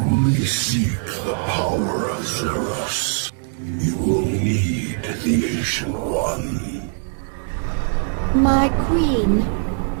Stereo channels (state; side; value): silent; left; digital silence